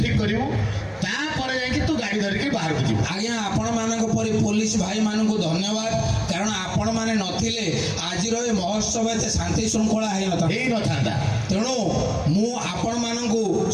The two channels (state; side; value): identical; both; correlation 1.00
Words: ଠିକ୍ କରିବୁ ତାପରେ ଯାଇକି ତୁ ଗାଡ଼ି ଧରିକି ବାହାରକୁ ଯିବୁ ଆଜ୍ଞା ଆପଣମାନଙ୍କ ପରି ପୋଲିସ ଭାଇମାନଙ୍କୁ ଧନ୍ୟବାଦ କାରଣ ଆପଣମାନେ ନଥିଲେ ଆଜିର ଏ ମହୋତ୍ସବ ଏତେ ଶାନ୍ତି ଶୃଙ୍ଖଳା ହେଇନଥାନ୍ତା ତେଣୁ ମୁଁ ଆପଣମାନଙ୍କୁ